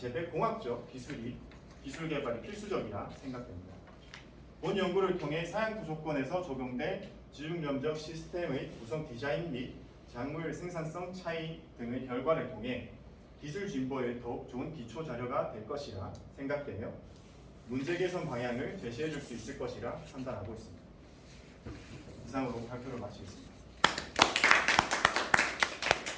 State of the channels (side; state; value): both; identical; correlation 1.00